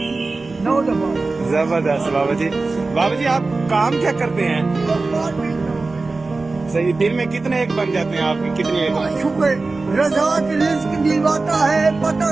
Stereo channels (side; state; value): left; quieter; 3.6 dB